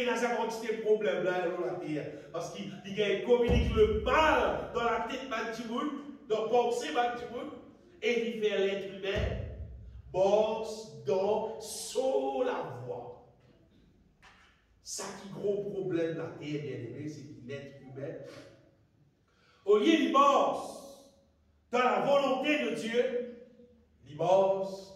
dans sa quantité de problèmes là dans la terre. Parce qu'il communique le mal dans la tête de monde, dans la pensée de monde, et il fait l'être humain. Bosse dans sur la voie. Ça qui gros problème la terre, bien aimé, c'est que l'être humain, au lieu de bosse dans la volonté de Dieu, il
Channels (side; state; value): both; identical; correlation 1.00